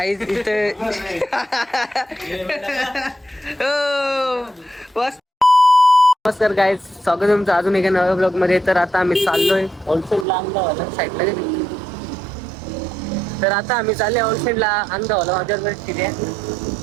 इथे नमस्कार गाईज, स्वागत आहे तुमचं अजून एका नव्या ब्लॉग मध्ये. तर आता आम्ही चाललोय होलसेलला अंगावाला साईडला गेली. तर आता आम्ही चालले होलसेलला अंगावाला. माझ्यावर किती आहे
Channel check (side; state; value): left; drops out; at 10.2 s